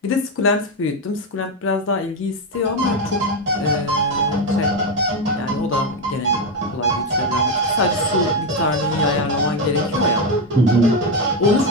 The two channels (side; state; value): both; normal; correlation 0.08